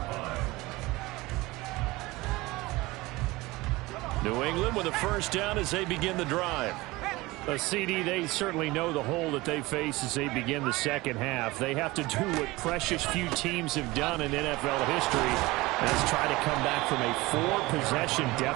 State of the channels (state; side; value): quieter; left; 20.9 dB